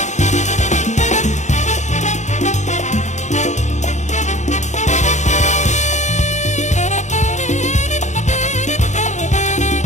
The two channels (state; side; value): late; right; 0.34 ms